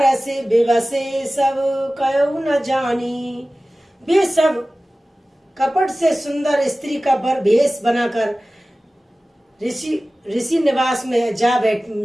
विवसे सब कयो न जानी। वे सब कपट से सुंदर स्त्री का भेष बनाकर ऋषि निवास में जा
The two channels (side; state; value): both; normal; correlation 0.97